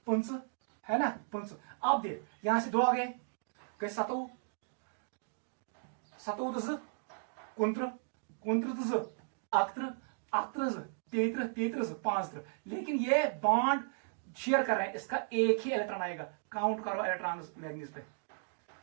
5 है ना, 5। अब देख यहां से 2 आ गए, 7 33 5। लेकिन ये बॉन्ड शेयर कर रहे हैं, इसका एक ही इलेक्ट्रॉन आएगा। काउंट करो इलेक्ट्रॉन मैग्नीज पे।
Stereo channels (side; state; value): left; silent; digital silence